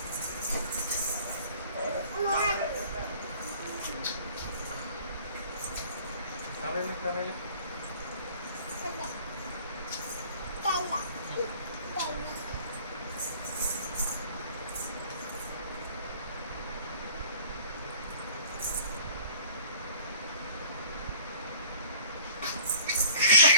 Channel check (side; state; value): both; inverted; correlation -0.48